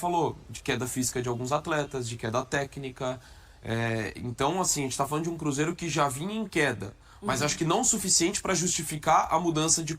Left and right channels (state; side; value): identical; both; correlation 1.00